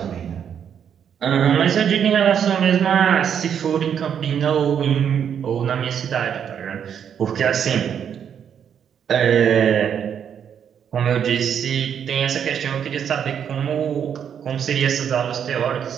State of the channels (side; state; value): left; quieter; 8.3 dB